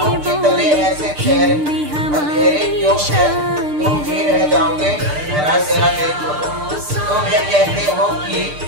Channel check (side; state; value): left; late; 6.7 ms